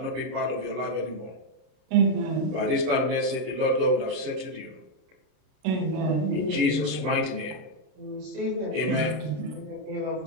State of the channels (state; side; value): late; left; 32 ms